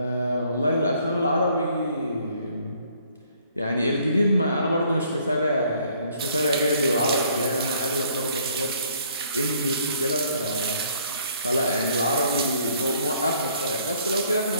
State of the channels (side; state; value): both; inverted; correlation -0.63